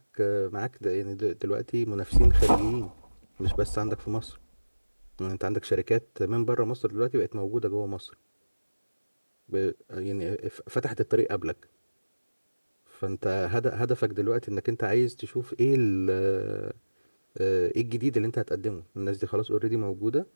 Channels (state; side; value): inverted; both; correlation -1.00